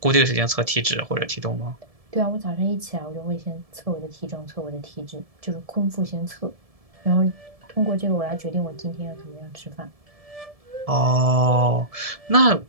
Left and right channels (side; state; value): left; late; 1.7 ms